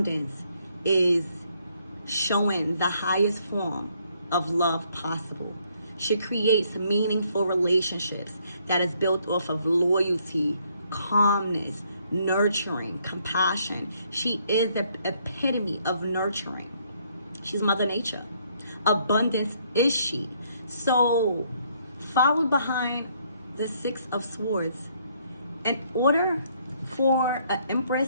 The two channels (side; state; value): both; inverted; correlation -0.68